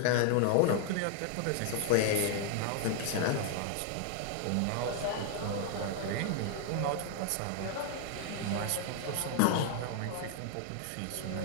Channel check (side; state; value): both; different; correlation 0.00